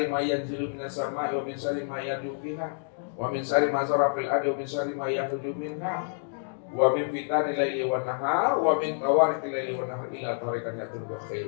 ma yanzilu minas sama'i wa min sari ma yad'u fiha wa min sari ma zara fil ardi wa min sari ma yakhruju minha wa min fitani laili wan nahar wa min tawariqil laili wan nahar ila tariqan yatul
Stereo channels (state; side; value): silent; right; digital silence